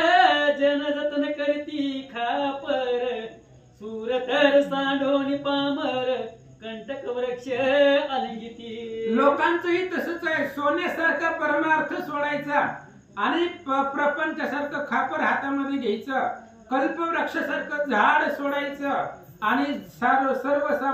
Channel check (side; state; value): both; identical; correlation 1.00